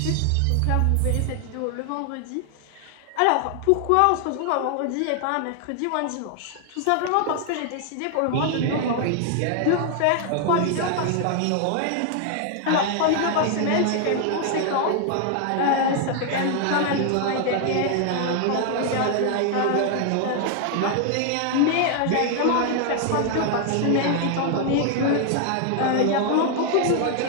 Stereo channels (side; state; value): both; different; correlation 0.00